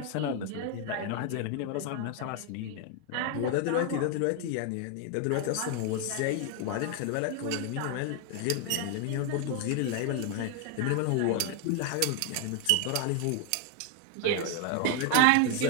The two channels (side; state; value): both; different; correlation 0.01